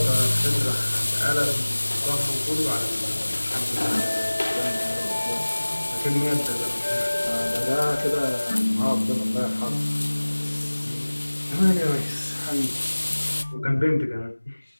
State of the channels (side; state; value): both; inverted; correlation -1.00